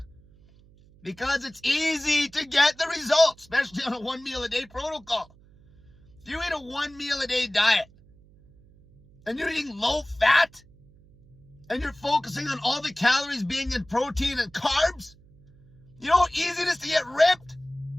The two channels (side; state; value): right; noise; hum, 27 dB below the sound